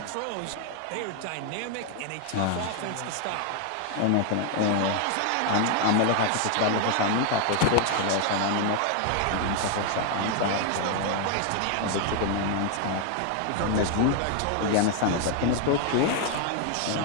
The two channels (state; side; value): different; both; correlation 0.00